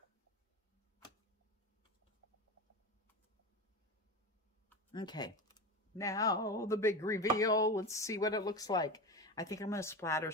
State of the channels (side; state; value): both; normal; correlation 0.24